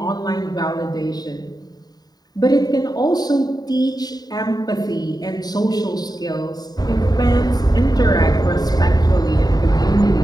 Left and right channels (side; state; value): right; late; 0.19 ms